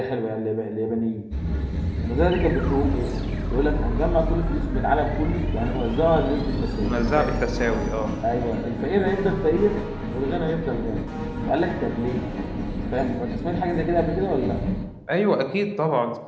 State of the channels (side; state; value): both; identical; correlation 1.00